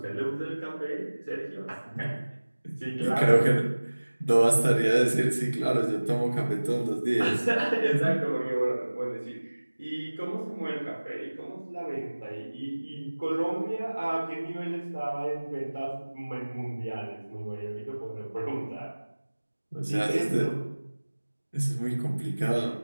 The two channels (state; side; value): inverted; both; correlation -1.00